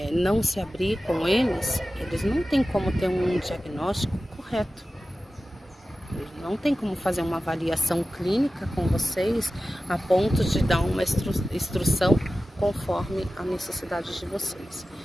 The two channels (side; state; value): both; normal; correlation 0.95